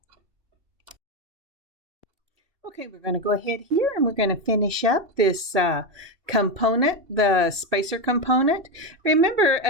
Okay, we're going to go ahead here and we're going to finish up this component, the spacer component. Remember,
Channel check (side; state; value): left; late; 2.7 ms